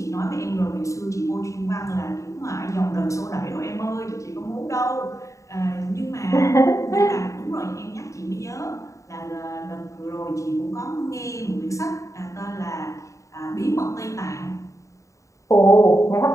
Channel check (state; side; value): late; right; 0.15 ms